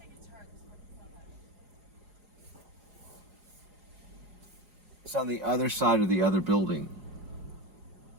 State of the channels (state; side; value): late; left; 4.8 ms